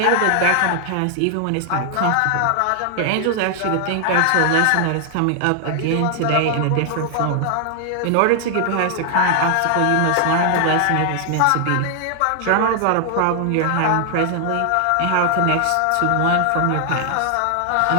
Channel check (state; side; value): different; both; correlation 0.00